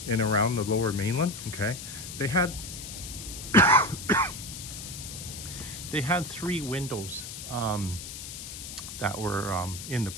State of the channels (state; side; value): noise; left; hiss, 9 dB below the sound